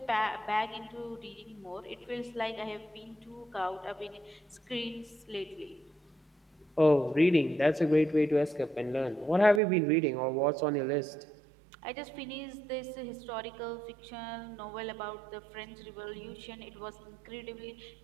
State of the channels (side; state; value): left; drops out; at 9.6 s